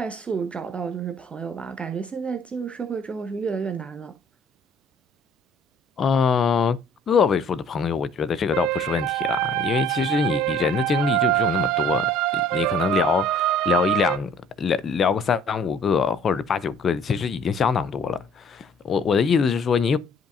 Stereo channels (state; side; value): normal; both; correlation 0.55